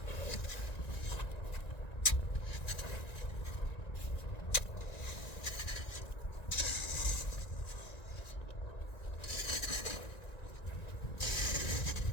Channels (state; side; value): late; right; 1.9 ms